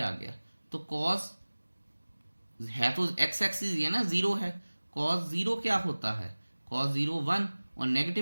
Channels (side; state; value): both; inverted; correlation -1.00